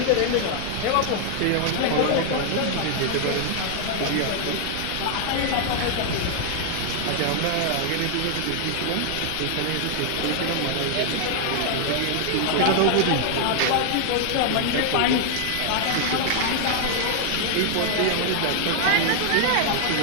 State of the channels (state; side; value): different; both; correlation 0.00